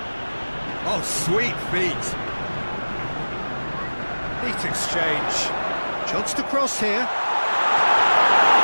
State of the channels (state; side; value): inverted; both; correlation -1.00